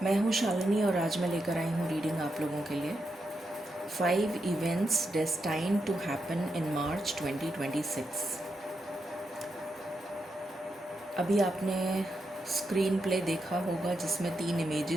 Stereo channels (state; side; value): normal; both; correlation 0.85